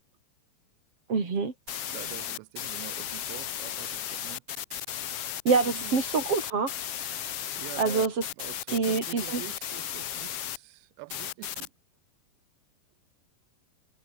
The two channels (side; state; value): left; late; 7.4 ms